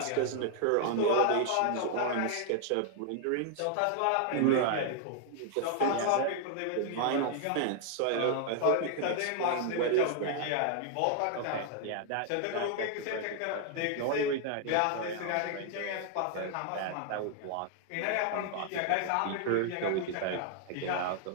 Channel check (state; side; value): different; both; correlation 0.00